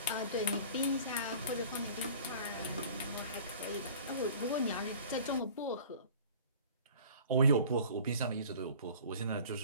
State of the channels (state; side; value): inverted; both; correlation -0.45